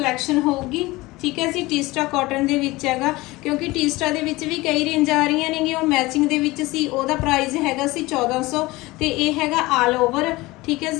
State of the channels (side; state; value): right; quieter; 20.7 dB